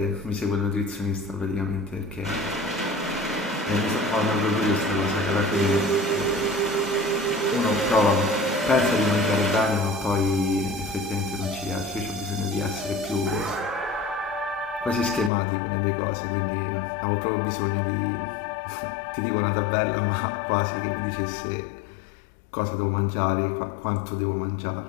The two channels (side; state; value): right; drops out; at 15.3 s